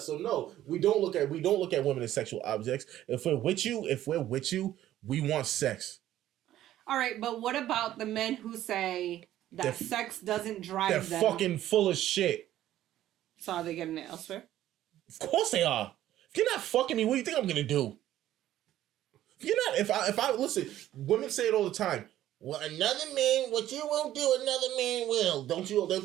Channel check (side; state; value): left; quieter; 13.0 dB